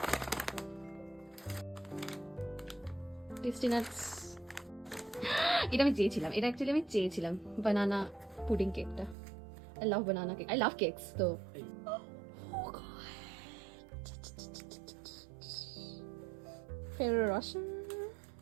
Tasty nuts. এটা আমি চেয়েছিলাম, এটা অ্যাকচুয়ালি আমি চেয়েছিলাম বানানা পুডিং কেকটা। I love banana cake, I love cakes তো। Ferrero Rocher.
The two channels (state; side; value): drops out; left; at 9.2 s